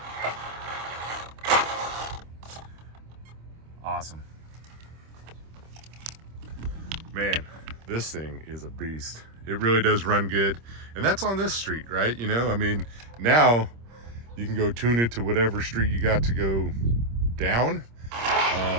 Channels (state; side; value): late; left; 26 ms